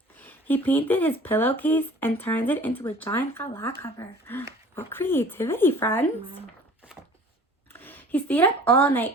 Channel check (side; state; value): both; normal; correlation 0.46